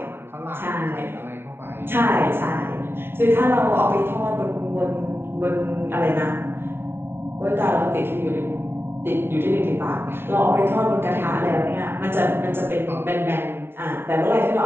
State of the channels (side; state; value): left; late; 0.11 ms